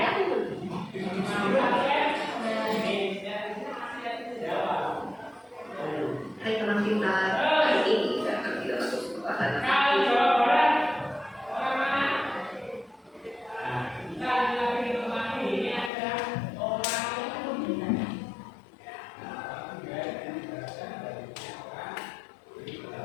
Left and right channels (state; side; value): drops out; right; at 15.9 s